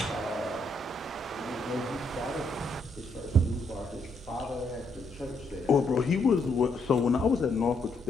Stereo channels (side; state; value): both; normal; correlation 0.75